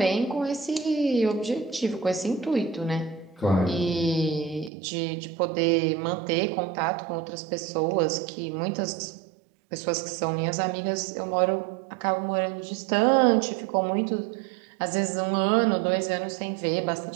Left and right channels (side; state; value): left; drops out; at 4.7 s